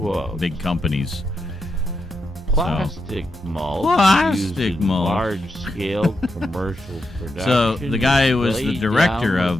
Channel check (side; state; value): both; normal; correlation 0.85